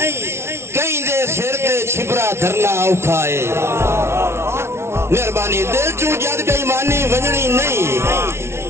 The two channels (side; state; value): left; late; 0.12 ms